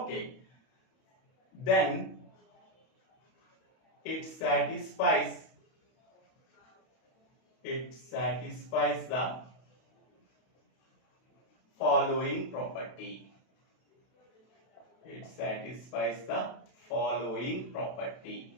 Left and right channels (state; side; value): late; right; 31 ms